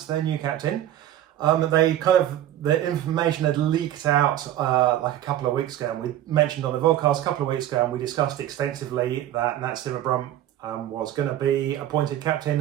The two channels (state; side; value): quieter; left; 12.3 dB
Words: their new captain. The information had leaked out like a couple of weeks ago, and we mentioned on the podcast a couple of weeks ago, and we discussed extensively that Nat Sciver-Brunt was going to be appointed